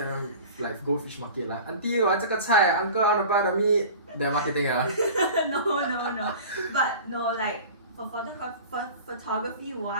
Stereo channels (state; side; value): inverted; both; correlation -0.38